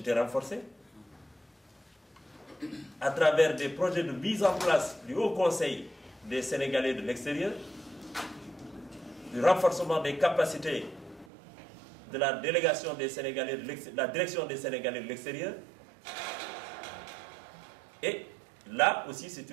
renforcées, à travers des projets de mise en place du Haut Conseil des Sénégalais de l'extérieur, du renforcement des capacités de la délégation des Sénégalais de la direction des Sénégalais de l'extérieur. Et là aussi, c'est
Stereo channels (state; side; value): drops out; left; at 11.2 s